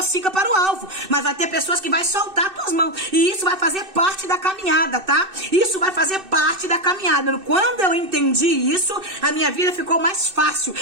para o alvo. Mas vai ter pessoas que vai soltar as tuas mãos, e isso vai fazer parte da caminhada, tá? Isso vai fazer parte da caminhada. Quando eu entendi isso, a minha vida ficou mais fácil.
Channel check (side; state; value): left; late; 2.6 ms